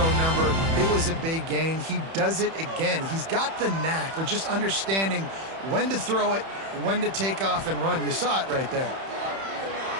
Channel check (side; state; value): left; late; 31 ms